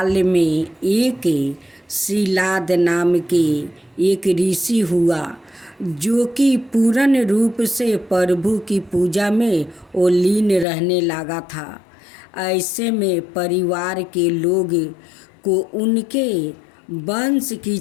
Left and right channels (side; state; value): right; drops out; at 10.7 s